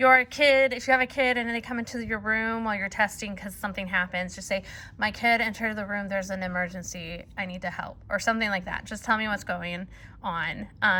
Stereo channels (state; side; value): identical; both; correlation 1.00